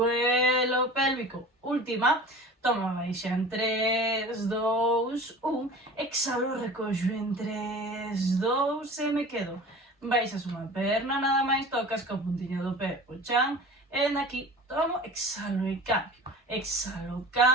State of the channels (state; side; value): normal; both; correlation 0.39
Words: pélvico. Última, toma, baixa en 3, 2, 1, exhalo, recollo en 3, 2 e me quedo. Baixas unha perna, nada máis, tocas ca puntiña do pé o chan, e aquí tomo, exhalo e cambio. Exhalo,